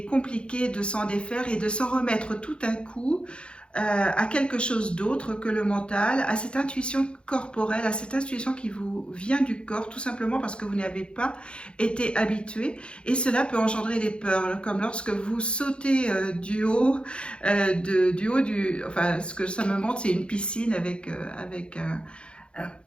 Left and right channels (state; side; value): late; right; 0.056 ms